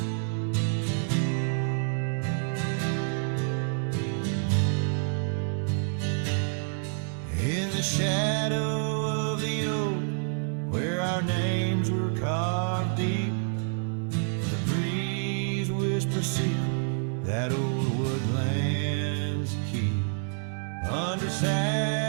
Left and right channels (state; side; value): silent; left; 59 dB below the other